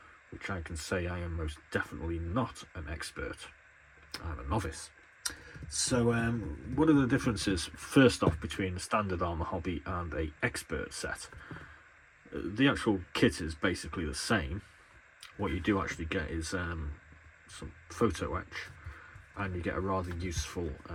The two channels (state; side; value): identical; both; correlation 1.00